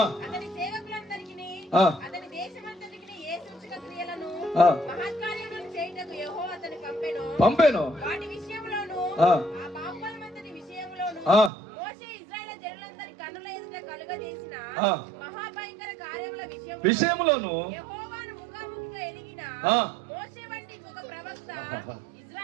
అతని సేవకులందరికీ అతని దేశమంతటికి ఏ సూచక క్రియలను మహత్కార్యములను చేయుటకు యెహోవా అతని పంపెను. వాటి విషయంలోను ఆ పాపమంతటి విషయంలోను మోషే ఇశ్రాయేలు జనులందరి కన్నుల ఎదుట కలుగజేసిన మహాభయంకర కార్యముల విషయంలోను యెహోవాను ముఖాముఖిగా ఎరిగిన మోషే వంటి ఒక ప్రవక్త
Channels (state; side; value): drops out; left; at 11.5 s